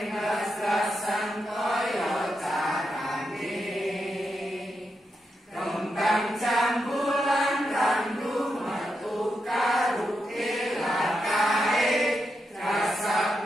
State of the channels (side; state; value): both; normal; correlation 0.85